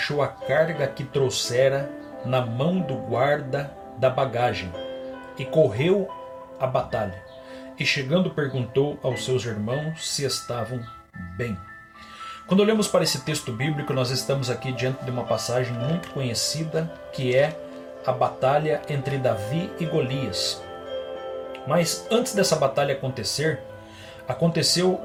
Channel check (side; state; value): both; identical; correlation 1.00